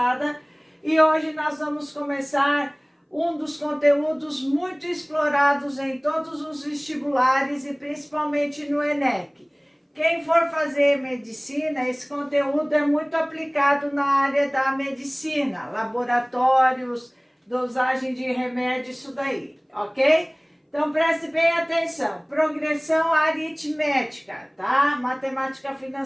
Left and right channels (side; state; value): both; identical; correlation 1.00